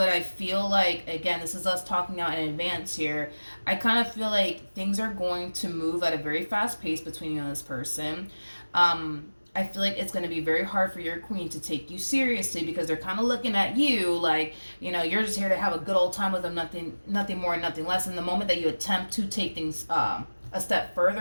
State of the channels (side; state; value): both; inverted; correlation -1.00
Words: I feel like, again, this is us talking out in advance here. I kind of feel like things are going to move at a very fast pace between you and this person. I feel like it's going to be very hard for your queen to take you seriously, because they're kind of looking at you like, you're just here to have a good old time with them, nothing more, nothing less. And the moment that you attempt to take things a step